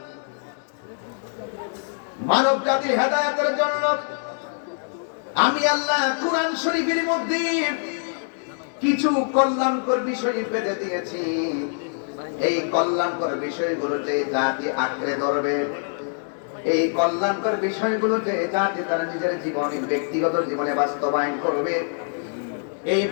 মানব জাতির হেদায়েতের জন্য আমি আল্লাহ কুরআন শরীফের মধ্যে কিছু কল্যাণকর বিষয় বেঁধে দিয়েছি। এই কল্যাণকর বিষয়গুলোতে জাতি আঁকড়ে ধরবে, এই কল্যাণকর বিষয়গুলোতে জাতি তার নিজের জীবনে, ব্যক্তিগত জীবনে বাস্তবায়ন করবে, এই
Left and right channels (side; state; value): right; silent; 62 dB below the other